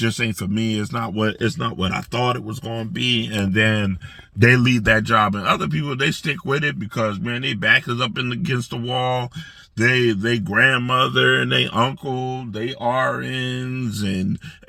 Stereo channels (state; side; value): identical; both; correlation 1.00